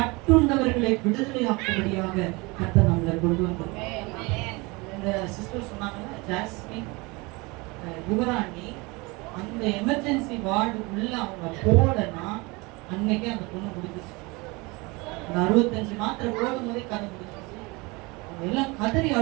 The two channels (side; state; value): left; quieter; 25.6 dB